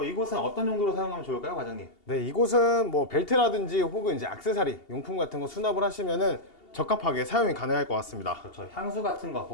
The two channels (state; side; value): late; right; 2.8 ms